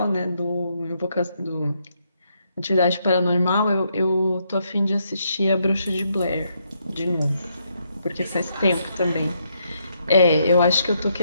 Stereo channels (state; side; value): inverted; both; correlation -0.76